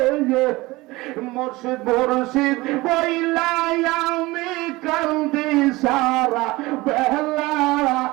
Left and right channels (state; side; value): quieter; left; 20.9 dB